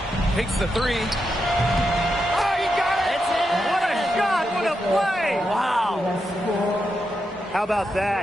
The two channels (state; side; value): normal; both; correlation 0.85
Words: Takes the three. Oh, you got it! What a shot! What a play! Wow. How about